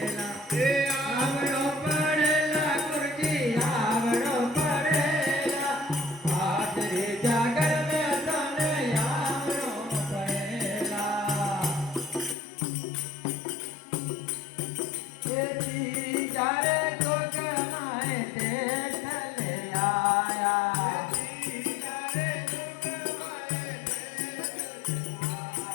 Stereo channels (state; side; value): drops out; right; at 12.4 s